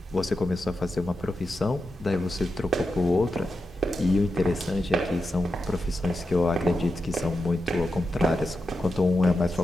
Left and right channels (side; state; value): both; normal; correlation 0.89